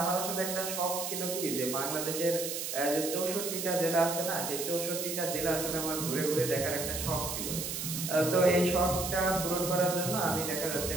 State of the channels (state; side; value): noise; right; hiss, 4 dB below the sound